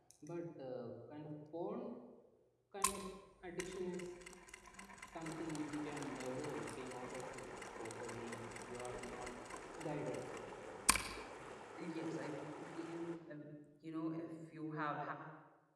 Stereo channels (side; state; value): both; identical; correlation 1.00